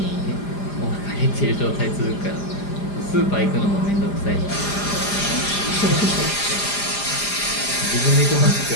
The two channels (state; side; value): late; right; 4.9 ms